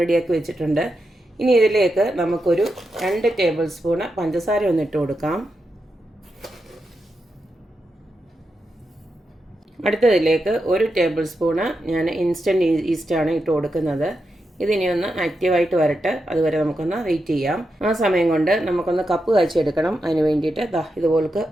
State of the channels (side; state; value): both; normal; correlation 0.86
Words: റെഡിയാക്കി വെച്ചിട്ടുണ്ട്. ഇനി ഇതിലേക്ക് നമുക്കൊരു 2 ടേബിൾ സ്പൂണ് പഞ്ചസാര ഒന്നിട്ട് കൊടുക്കാം. അടുത്തതിലേക്ക് 1 ടേബിൾ സ്പൂണ് ഞാൻ ഇൻസ്റ്റൻറ്റ് ഈസ്റ്റാണ് ഇട്ട് കൊടുക്കുന്നത്. ഇതിനി ഒന്ന് ആക്റ്റീവായിട്ട് വരട്ടെ, അതുവരെ നമുക്കൊന്ന് വെയിറ്റ് ചെയ്യാം. ആ സമയം കൊണ്ട് നമുക്കൊന്ന് കപ്പ് കാച്ചിയെടുക്കണം. അതിന് വേണ്ടിയിട്ട് ഇതുപോലക്ക്